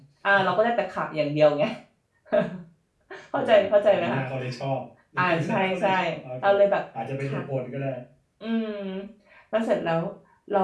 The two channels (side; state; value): both; identical; correlation 1.00